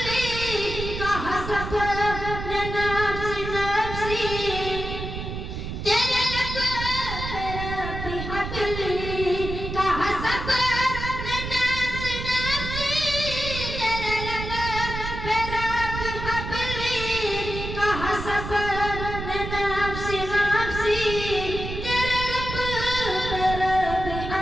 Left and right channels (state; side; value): noise; right; rumble, 6 dB below the sound